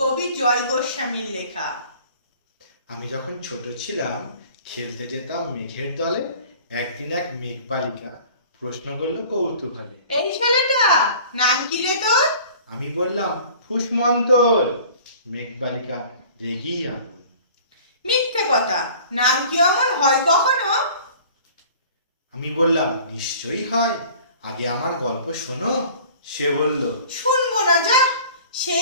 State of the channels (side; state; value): both; inverted; correlation -0.47